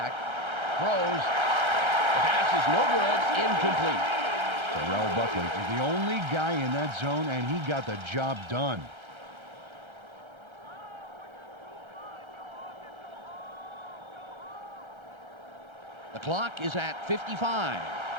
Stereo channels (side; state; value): left; late; 1.3 ms